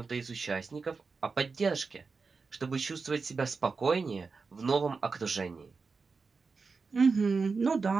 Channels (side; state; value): left; quieter; 4.6 dB